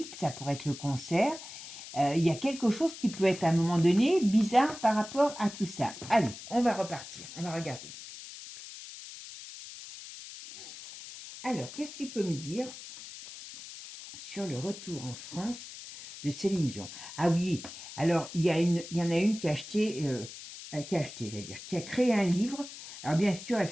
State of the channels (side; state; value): left; noise; hiss, 13 dB below the sound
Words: ça pourrait être le cancer. Il y a quelque chose qui peut être à un moment donné bizarre par rapport à tout ça. Allez, on va repartir, on va regarder. Alors, qu'est-ce que tu peux me dire sur le retour en France de Céline Dion? Ah oui, alors il y en a une qui a acheté, qui a créé un livre. Alors bien sûr, elle